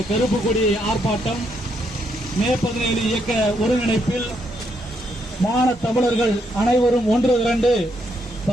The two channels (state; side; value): normal; both; correlation 0.76